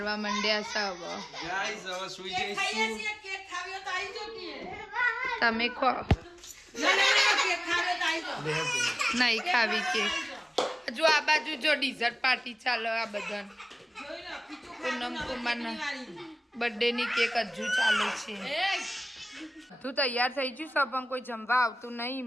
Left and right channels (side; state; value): both; normal; correlation 0.98